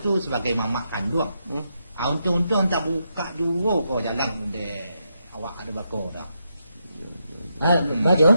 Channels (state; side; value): inverted; both; correlation -0.82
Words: sebagai mamak kandung. Untung-untung tak buka dua kau jalan de awak ada bakor dah.